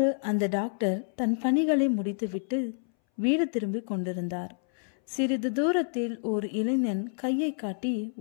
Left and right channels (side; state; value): right; silent; 59 dB below the other